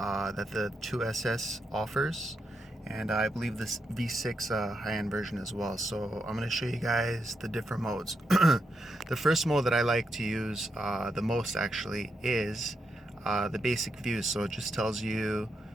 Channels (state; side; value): normal; both; correlation 0.83